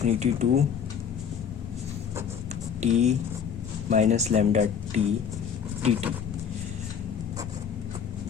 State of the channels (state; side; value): quieter; right; 7.4 dB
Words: to t minus lambda t dt.